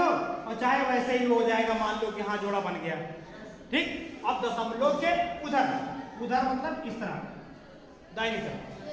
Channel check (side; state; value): both; identical; correlation 1.00